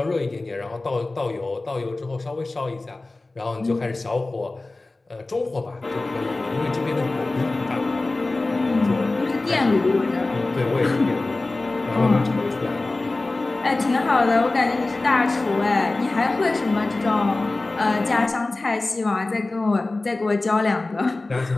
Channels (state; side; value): quieter; right; 3.1 dB